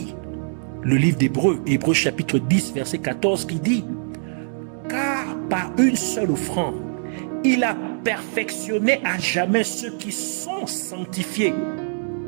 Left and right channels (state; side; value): silent; left; digital silence